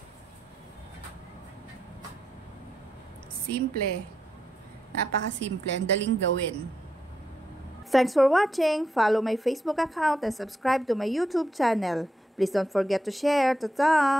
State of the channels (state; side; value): normal; both; correlation 0.83